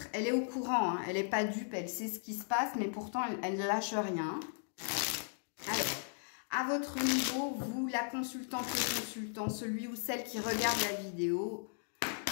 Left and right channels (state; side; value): silent; right; digital silence